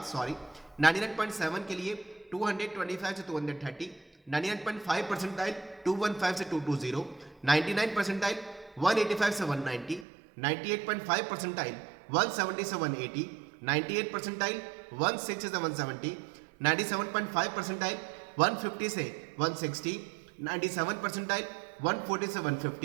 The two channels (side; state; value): left; drops out; at 10.1 s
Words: 99.7 के लिए 225 से 230, 99.5 परसेंटाइल 215 से 220, 99 परसेंटाइल 185 से 190, 98.5 परसेंटाइल 170 से 180, 98 परसेंटाइल 160 से 170, 97.5 परसेंटाइल 150 से 160, 97 परसेंटाइल 140 से